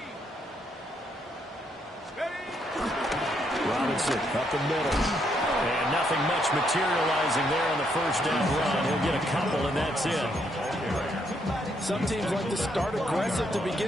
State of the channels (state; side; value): normal; both; correlation 0.74